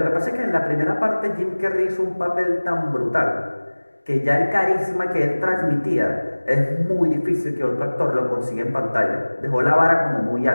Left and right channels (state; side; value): inverted; both; correlation -1.00